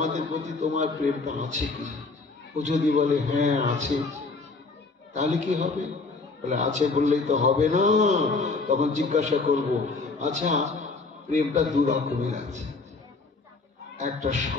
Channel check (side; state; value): right; quieter; 3.9 dB